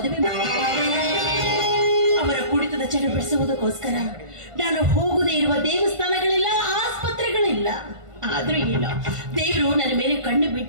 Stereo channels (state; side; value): late; left; 1.5 ms